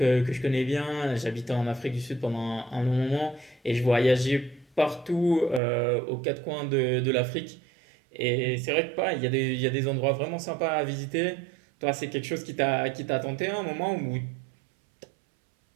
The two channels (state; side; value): drops out; left; at 5.6 s